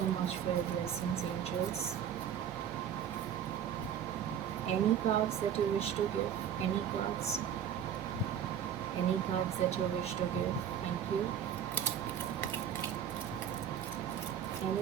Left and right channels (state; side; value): quieter; left; 9.1 dB